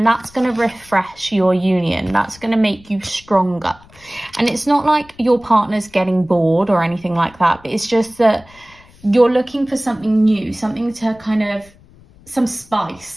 that's going to refresh your union. That's going to make you stronger. And it's not like your partner's getting bored or anything like that. But it's just that you're looking for something new, something to kind of, some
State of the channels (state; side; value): noise; left; rumble, 26 dB below the sound